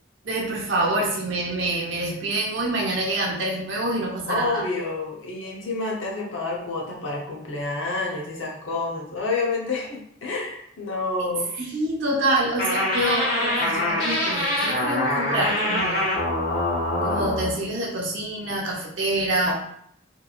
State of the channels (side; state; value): both; normal; correlation 0.01